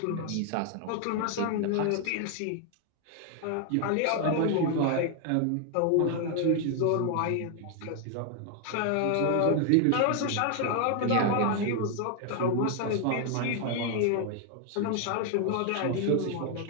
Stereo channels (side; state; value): both; different; correlation 0.00